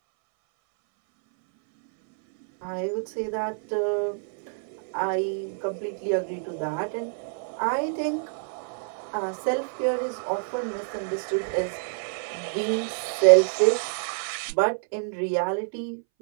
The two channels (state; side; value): silent; left; 60 dB below the other